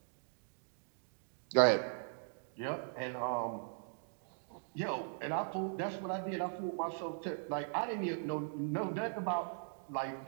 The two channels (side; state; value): left; silent; digital silence